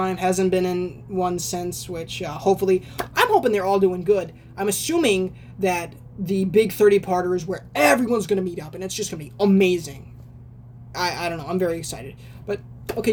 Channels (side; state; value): both; identical; correlation 1.00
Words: Hasn't been in one since, which hopefully... I'm hoping they're all doing good. I'm assuming that the big 30-parter is where everyone's going to meet up, and it's just going to be amazing. I don't know. I'm very excited. But,